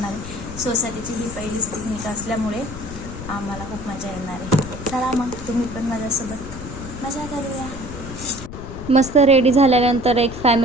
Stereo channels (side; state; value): left; noise; rumble, 10 dB below the sound